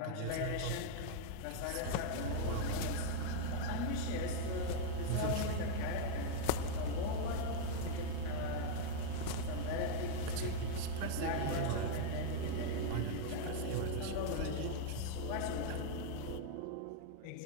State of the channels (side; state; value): both; different; correlation 0.00